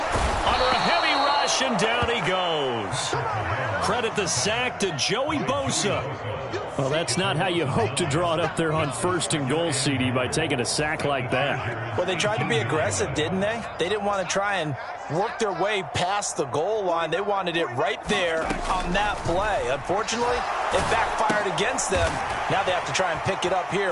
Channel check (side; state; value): both; identical; correlation 1.00